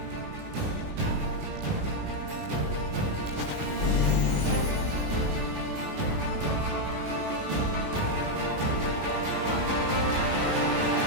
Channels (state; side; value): late; left; 20 ms